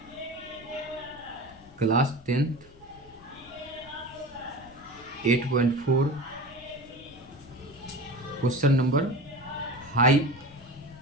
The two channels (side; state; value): left; noise; rumble, 23 dB below the sound